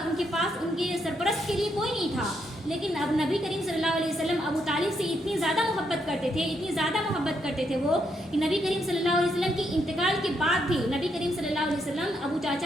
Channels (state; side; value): normal; both; correlation 0.77